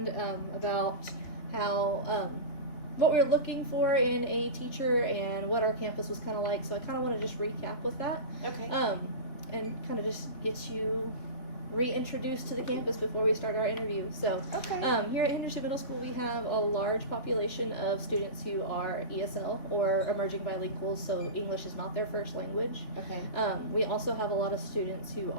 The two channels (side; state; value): right; late; 3.4 ms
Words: about how what we were looking for in a teacher and what our campus was kind of like. So I kind of want to just recap with that. Okay. And kind of just get you reintroduced to the campus before we start our interview. So, Okay. Here at Henderson Middle School, we have a large population of students who are ESL or emerging bilinguals, so English is not their first language. Okay. We also have a lot of students who